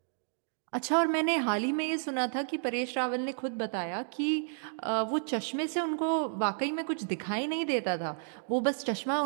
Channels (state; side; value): silent; left; digital silence